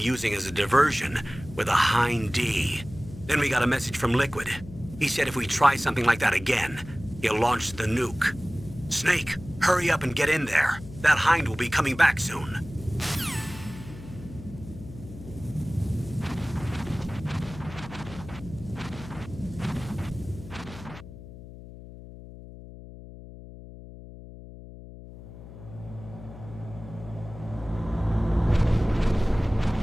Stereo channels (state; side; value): noise; left; hum, 15 dB below the sound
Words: as a diversion with a Hind D. Then we got a message from Liquid. He said if we try something like that again, he'll launch the nuke. Snake, hurry up and get in there. That Hind will be coming back soon.